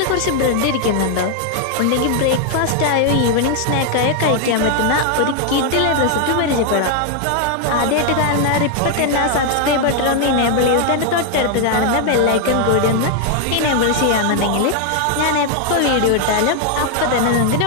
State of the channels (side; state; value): both; different; correlation 0.00